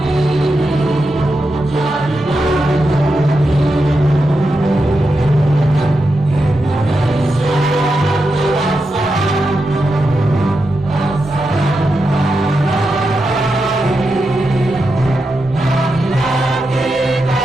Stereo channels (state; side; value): normal; both; correlation 0.88